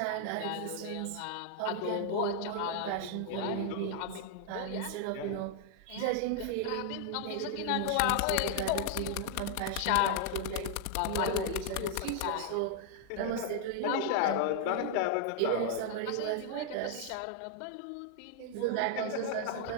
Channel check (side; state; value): both; different; correlation 0.00